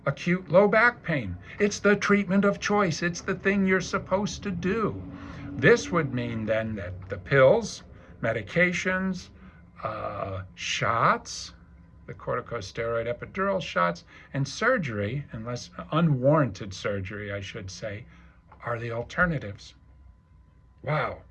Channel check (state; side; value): identical; both; correlation 1.00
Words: acute low back pain. It's the treatment of choice. It's the thing you're supposed to do. This would mean then that the pills, medications, shots, the corticosteroid epidural shots, and surgery, unless unwarranted surgery, I should say, are the alternatives. Wow.